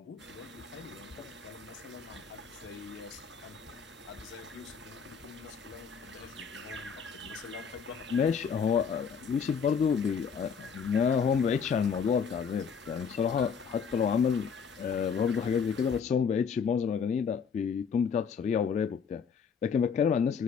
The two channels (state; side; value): quieter; right; 6.4 dB